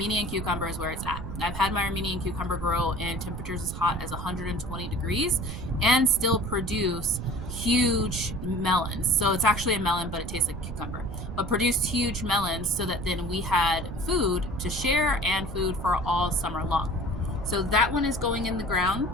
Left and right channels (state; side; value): noise; right; rumble, 7 dB below the sound